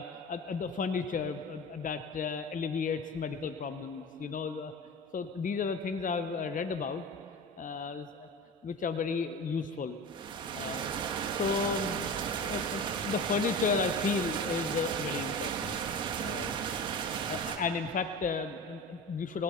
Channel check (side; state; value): both; normal; correlation 0.31